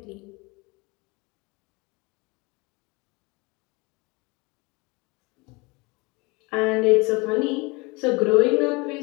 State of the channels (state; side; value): quieter; right; 26.3 dB